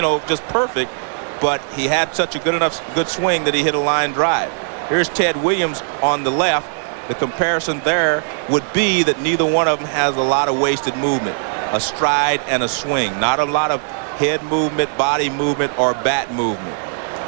just perfect, but he had such a good swing that he hit a line drive. Here's Ted Williams on the left. The comparison there would be that neither one of them has a lot of wasted movement, a stride and a swing, not a lot of head movement, body movement, or bat movement.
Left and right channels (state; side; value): silent; left; digital silence